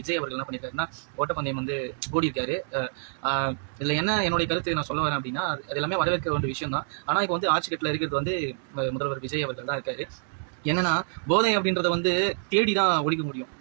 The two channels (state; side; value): silent; left; digital silence